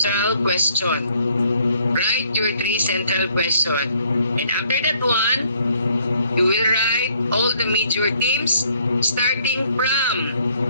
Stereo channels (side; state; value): both; inverted; correlation -0.65